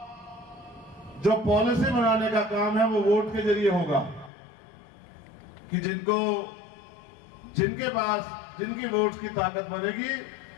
जो पॉलिसी बनाने का काम है वो वोट के जरिए होगा कि जिनके पास जिनकी वोट की ताकत बनेगी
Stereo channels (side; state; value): right; drops out; at 4.3 s